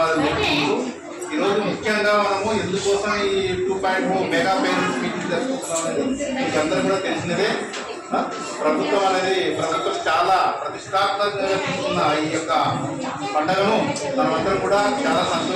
చెప్పుకుంటూ ఈరోజు ముఖ్యంగా మనము ఎందుకోసం ఈ 2.0 మెగా పేరెంట్స్ మీటింగ్ జరుపుకుంటున్నాం అనేది మీకు అందరూ కూడా తెలిసినదే. ప్రభుత్వం చాలా ప్రతిష్టాత్మకంగా తీసుకున్న ఈ యొక్క పండుగను మనమందరం కూడా చాలా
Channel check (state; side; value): identical; both; correlation 1.00